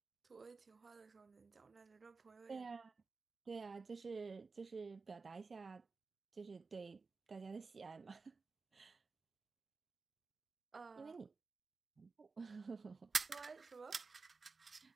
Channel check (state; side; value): quieter; left; 4.3 dB